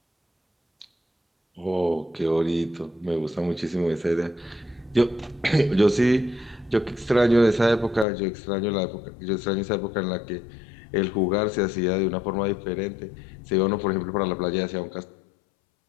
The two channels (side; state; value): right; drops out; at 8.1 s